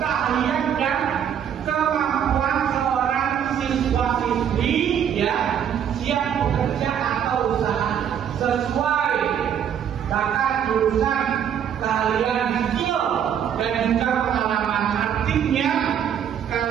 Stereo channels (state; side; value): quieter; left; 8.9 dB